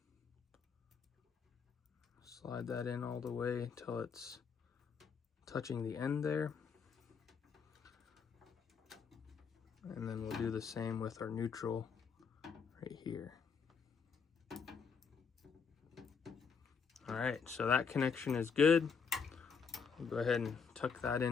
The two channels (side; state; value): right; quieter; 6.0 dB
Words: Slide that in all the way until it's touching the end there. And then we'll do the same with our neutral right here. All right, so that connection is good. We'll go ahead and tuck that